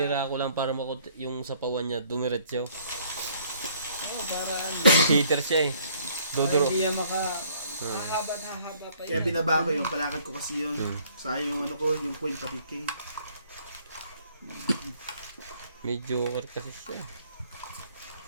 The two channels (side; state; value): both; inverted; correlation -0.61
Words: ko lang para yung sapawan niya dumiretso. Oo, para ano. Cheater siya eh. Dodoro. Hindi niya mahaba na haba pa Kaya yun. binaba ko yung palakad ko kasi yun. Sayang yung ano ko, yung point pati king. May joker kasi siya eh.